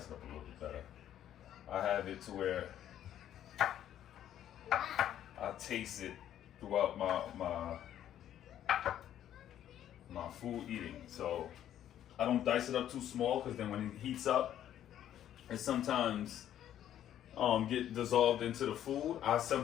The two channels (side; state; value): right; quieter; 11.1 dB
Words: it up a little bit better. I have it to where I taste it throughout my food eating. So I don't dice it up too small, because then when it heats up, it sometimes get dissolved into the food. I